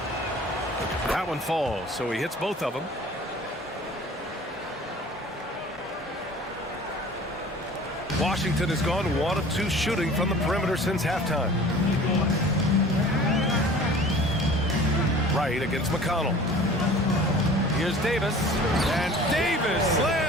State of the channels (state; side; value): normal; both; correlation 0.45